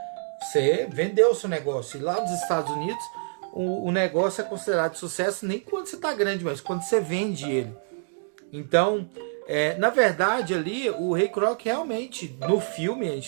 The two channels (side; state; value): left; silent; digital silence